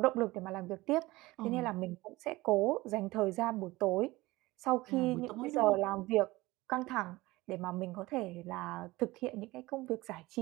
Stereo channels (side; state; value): left; quieter; 19.9 dB